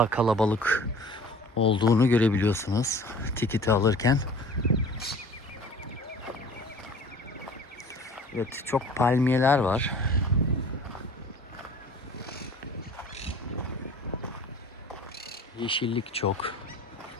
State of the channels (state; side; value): normal; both; correlation 0.46